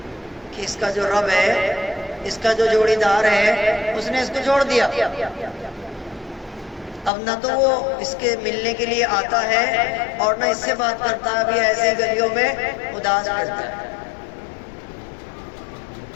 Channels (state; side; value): drops out; right; at 7.1 s